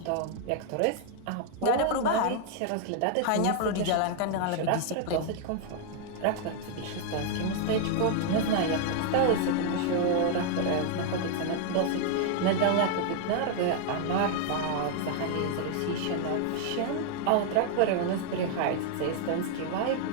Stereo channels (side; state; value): both; different; correlation 0.00